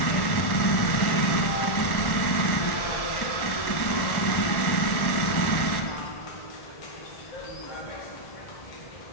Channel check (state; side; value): late; right; 1.1 ms